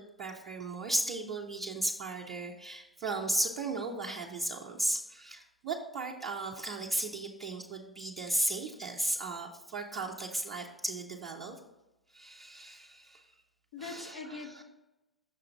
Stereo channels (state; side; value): normal; both; correlation 0.70